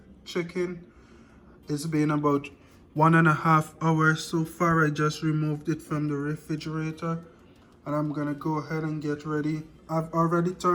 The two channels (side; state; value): both; identical; correlation 1.00